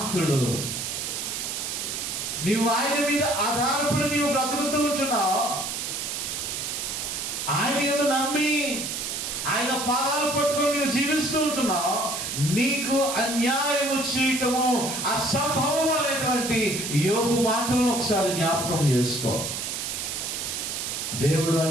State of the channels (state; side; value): noise; right; hiss, 4 dB below the sound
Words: నీవు ఆయన మీద ఆధారపడి నీవు బ్రతుకుతూ ఉంటున్నావు. ఆయన ఏదో నమ్మి ఆయన పాదాలు పట్టుకొని నీవు జీవిస్తూ ఉంటున్నావు. నీకు అన్యాయము చేయటము అసంభవం అనేటువంటి యోబు మాటలను ఒకసారి జ్ఞాపకం చేసుకో. దేవుడు